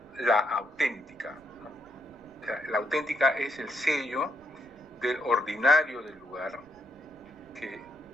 la auténtica, ¿no? O sea, la auténtica es el sello del ordinario del lugar que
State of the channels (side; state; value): right; noise; rumble, 30 dB below the sound